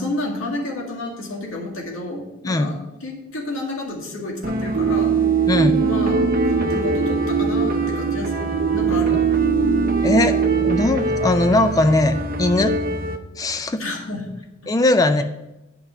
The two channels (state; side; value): normal; both; correlation 0.46